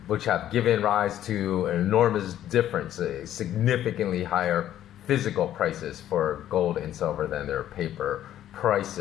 given rise to an enormous difference, significantly higher physical prices for gold and silver than their paper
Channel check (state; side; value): quieter; right; 11.8 dB